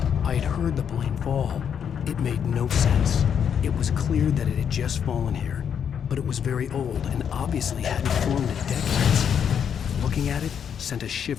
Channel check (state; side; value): quieter; right; 8.0 dB